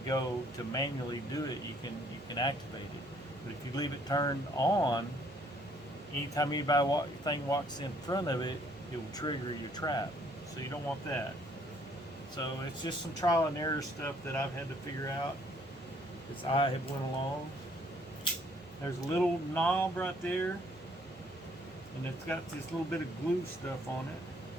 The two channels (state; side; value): normal; both; correlation 0.63